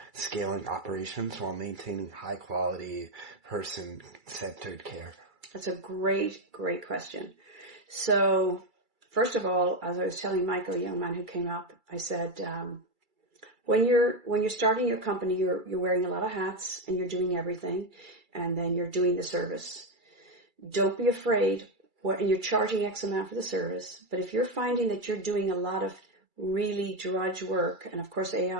scaling operations while maintaining high quality, person-centered care? That's a great, great question. So, first of all, as I was telling Michael, a young man who came up, I said, when you're starting your company, you're wearing a lot of hats and you're doing everything, and then you're doing the service. Don't be afraid. And you're charging X amount for the service, but if you're finding that you're doing a lot of really drudge work, and of course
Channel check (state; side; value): late; left; 2.3 ms